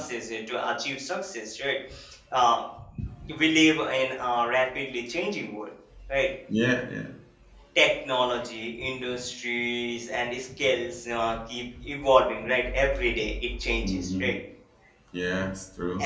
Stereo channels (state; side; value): identical; both; correlation 1.00